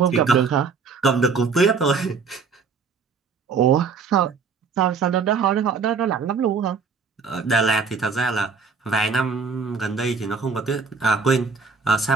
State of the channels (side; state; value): left; quieter; 5.2 dB